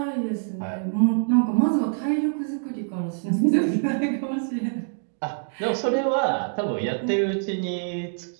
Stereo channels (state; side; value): silent; left; digital silence